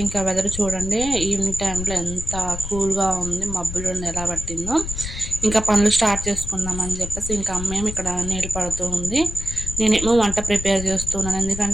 ఇంకా వెదర్ చూడండి, ఈవినింగ్ టైంలో ఎంత కూల్గా ఉంది, మబ్బులు ఎలా పట్టిందో. ఇంకా పనులు స్టార్ట్ చేసుకుందామని చెప్పేసి ఇంకా అమ్మేమో ఇక్కడ నీళ్ళు పడుతూ ఉంది, నేనేమో వంట ప్రిపేర్ చేస్తున్నాను.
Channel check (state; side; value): noise; left; rumble, 8 dB below the sound